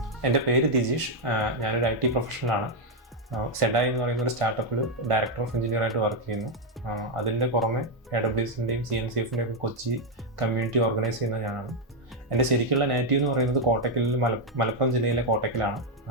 എൻ്റെ പേര് ദിജീഷ്. ഞാനൊരു IT പ്രൊഫഷണലാണ്. സെഡായി എന്ന് പറയുന്ന ഒരു സ്റ്റാർട്ടപ്പിൽ ഡയറക്ടർ ഓഫ് എഞ്ചിനീയറായിട്ട് വർക്ക് ചെയ്യുന്നു. അതിൻ്റെ പുറമെ AWSൻ്റെയും CNCFൻ്റെയും ഒക്കെ കൊച്ചി കമ്മ്യൂണിറ്റി ഓർഗനൈസ് ചെയ്യുന്ന ഞാനാണ്. എൻ്റെ ശരിക്കുള്ള നേറ്റീവ് എന്ന് പറയുന്നത് കോട്ടക്കലിൽ മലപ്പുറം ജില്ലയിലെ കോട്ടക്കലാണ്.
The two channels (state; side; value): normal; both; correlation 0.02